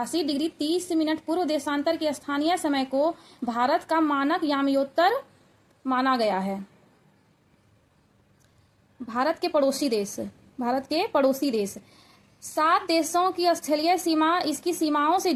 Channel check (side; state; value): both; identical; correlation 1.00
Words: डिग्री 30 मिनट पूर्व देशांतर के स्थानीय समय को भारत का मानक यामयोत्तर माना गया है। भारत के पड़ोसी देश 7 देशों की स्थलीय सीमा इसकी सीमाओं से